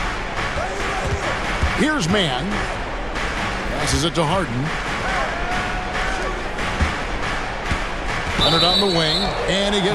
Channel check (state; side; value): identical; both; correlation 1.00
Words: Here's Mann. Passes it to Harden. Leonard on the wing, and he